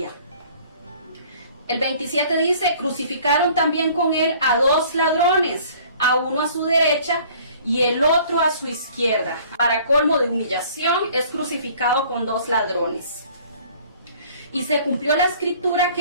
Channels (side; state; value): both; inverted; correlation -0.53